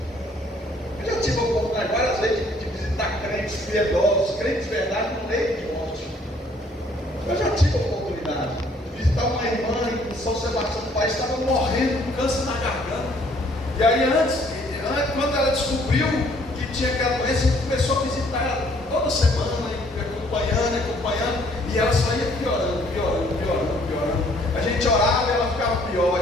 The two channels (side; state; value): both; normal; correlation 0.62